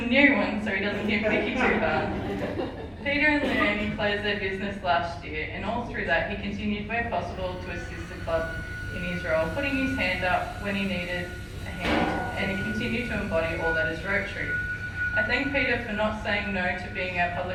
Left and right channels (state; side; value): identical; both; correlation 1.00